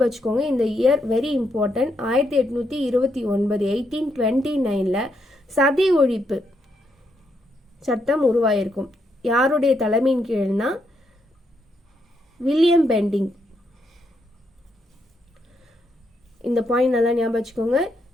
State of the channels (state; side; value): normal; both; correlation 0.78